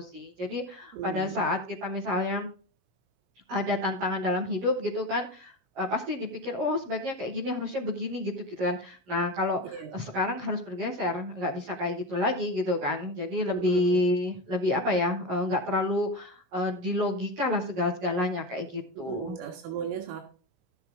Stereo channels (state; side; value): late; left; 16 ms